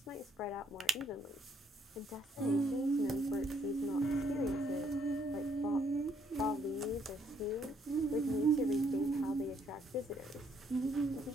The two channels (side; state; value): both; normal; correlation 0.69